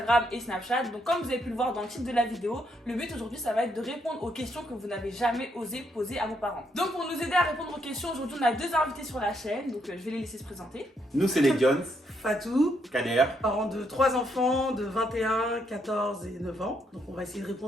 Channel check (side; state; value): both; normal; correlation 0.75